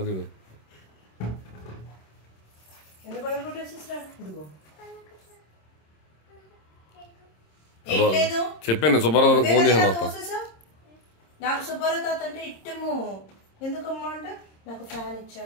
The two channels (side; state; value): right; late; 26 ms